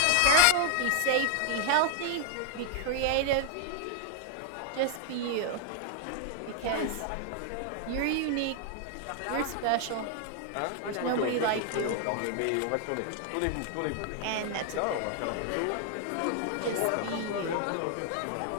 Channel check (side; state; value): both; different; correlation 0.00